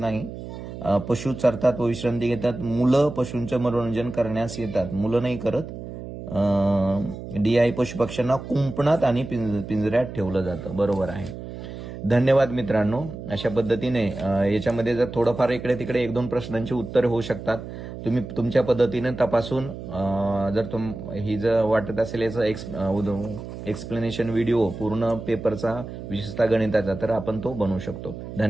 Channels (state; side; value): noise; right; hum, 10 dB below the sound